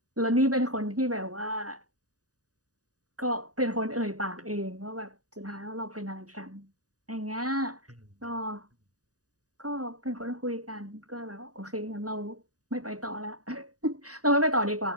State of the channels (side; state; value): left; late; 0.67 ms